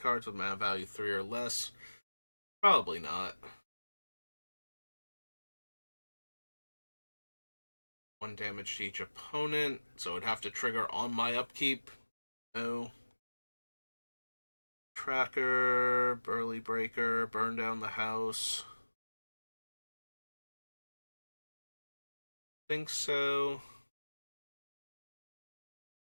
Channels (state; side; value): inverted; both; correlation -1.00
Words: with mana value 3 or less? Probably not. 1 damage to each opponent, so it'd have to trigger on my upkeep. No. Tracker, Burly Breaker, burn down the house. Think so.